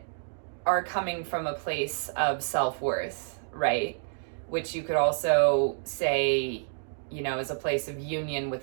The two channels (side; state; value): left; silent; digital silence